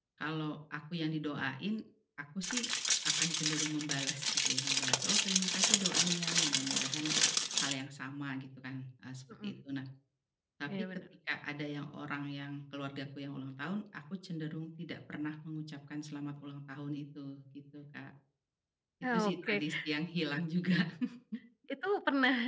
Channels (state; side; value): identical; both; correlation 1.00